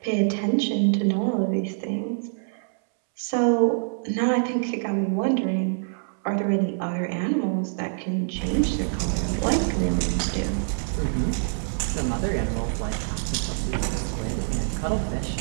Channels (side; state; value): left; silent; 61 dB below the other